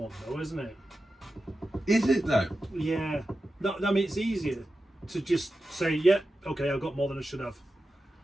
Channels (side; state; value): both; normal; correlation 0.92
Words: though, isn't it? Is it though? Yeah. No, I mean, it's easier to just say, yeah, okay, I've got more than I should have,